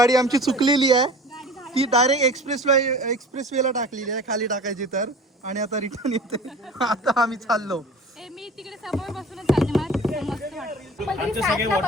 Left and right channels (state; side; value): normal; both; correlation 0.40